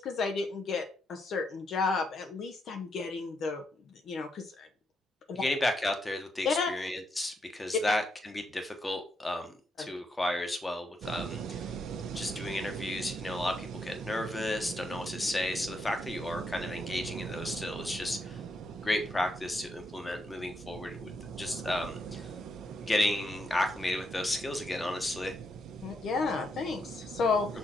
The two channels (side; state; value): both; normal; correlation 0.79